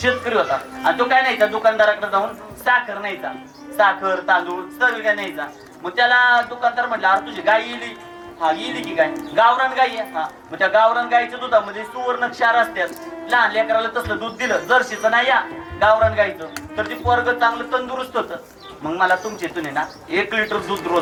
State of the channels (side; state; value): both; identical; correlation 1.00